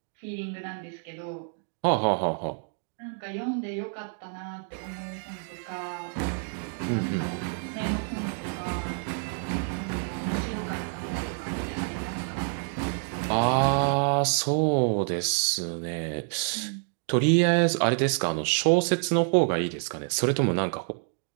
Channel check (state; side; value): silent; left; 59 dB below the other